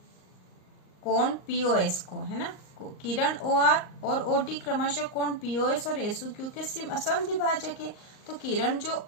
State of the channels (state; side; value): late; right; 38 ms